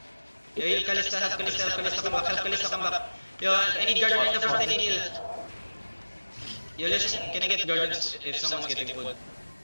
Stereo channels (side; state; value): both; inverted; correlation -1.00